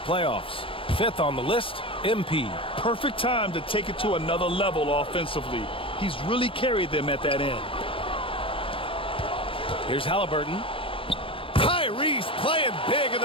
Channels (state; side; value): late; right; 0.26 ms